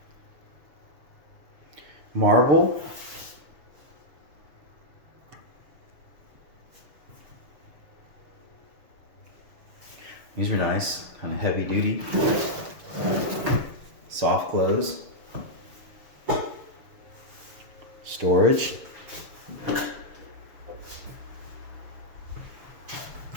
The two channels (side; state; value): left; late; 6.6 ms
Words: Marble. These are nice, kind of heavy duty. Soft close. Storage.